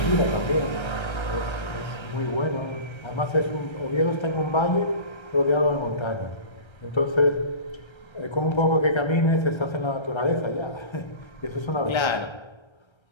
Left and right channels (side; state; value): right; late; 1.3 ms